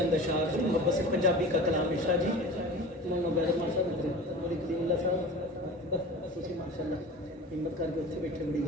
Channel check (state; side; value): normal; both; correlation 0.36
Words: اشعار سے محبت سے پنجابی کا کلام ارشاد جی ماشاء اللہ ہمت کر کے اتنے بیٹھے بڑی